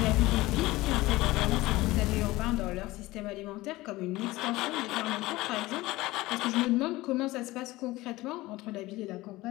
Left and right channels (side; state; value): right; quieter; 19.1 dB